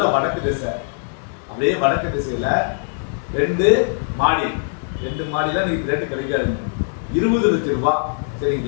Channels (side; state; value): right; silent; 65 dB below the other